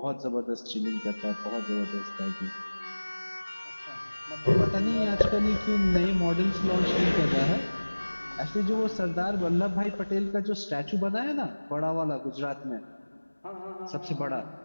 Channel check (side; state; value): both; inverted; correlation -1.00